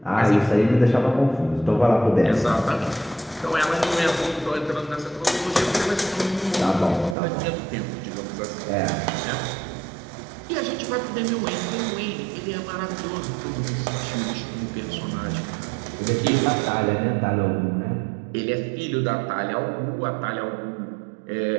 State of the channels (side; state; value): left; drops out; at 7.2 s